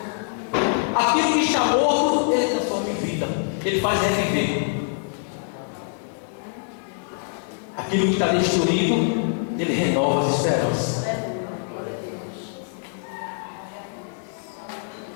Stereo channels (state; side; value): silent; right; digital silence